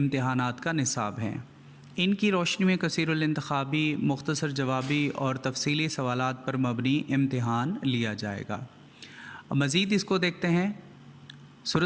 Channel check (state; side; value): identical; both; correlation 1.00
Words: کا نصاب ہیں۔ ان کی روشنی میں کثیر الانتخابی، مختصر جوابی اور تفصیلی سوالات پر مبنی امتحان لیا جائے گا۔ مزید اس کو دیکھتے ہیں۔